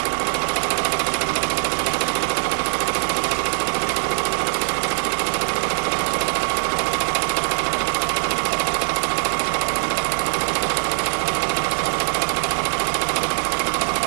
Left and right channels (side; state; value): left; silent; digital silence